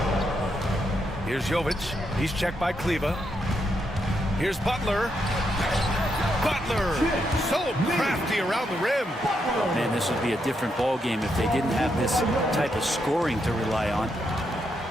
Here's Jovic. He's checked by Kleba. Here's Butler. Butler, so crafty around the rim. Man, this would be a different ball game if they didn't have this type of scoring to rely on.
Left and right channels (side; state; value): both; normal; correlation 0.80